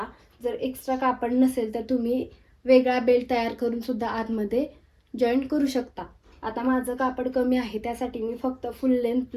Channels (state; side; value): identical; both; correlation 1.00